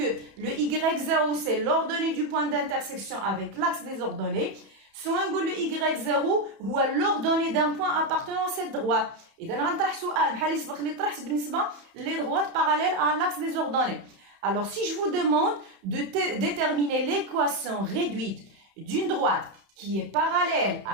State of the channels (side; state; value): left; late; 31 ms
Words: le y0 c'est l'ordonnée du point d'intersection avec l'axe des ordonnées soit نقول le y0 هو l'ordonnée d'un point appartenant à cette droite. إذا غنطرح سؤال بحال اللي سبق اللي طرحت بالنسبة les droites parallèles à l'axe des ordonnées. alors si je vous demande de déterminer l'équation réduite d'une droite qui est parallèle